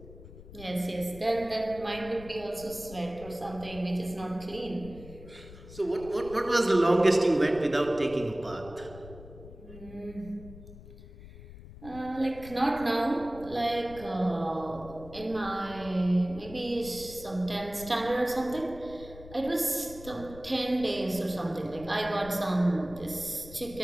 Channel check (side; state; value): left; noise; rumble, 16 dB below the sound